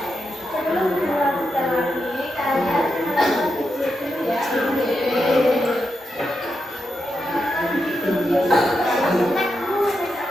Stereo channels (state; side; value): normal; both; correlation 0.86